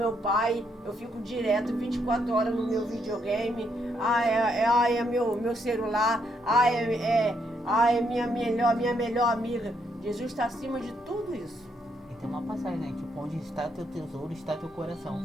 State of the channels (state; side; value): normal; both; correlation 0.75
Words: pai. Eu fico direto 24 horas no meu videogame. É meu celular. É minha melhor amiga. Jesus está acima de tudo isso. E tem uma passagem, né? Tipo, onde está teu tesouro, está teu coração.